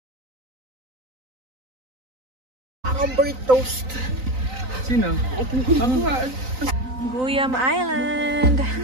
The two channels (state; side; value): late; left; 3.9 ms